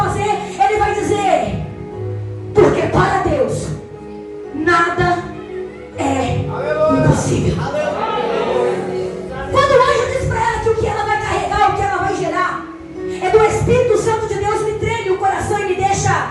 ele vai dizer: porque para Deus nada é impossível. Quando o anjo diz para ela que o que ela vai carregar, o que ela vai gerar é do Espírito Santo de Deus, me treme o coração e me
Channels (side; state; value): both; identical; correlation 1.00